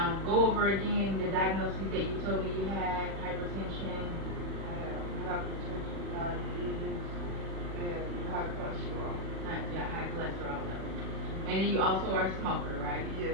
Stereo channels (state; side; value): late; left; 40 ms